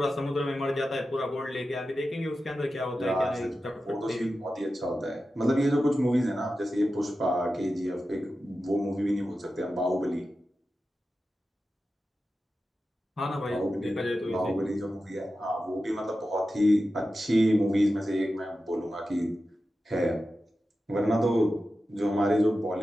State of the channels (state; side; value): normal; both; correlation 0.92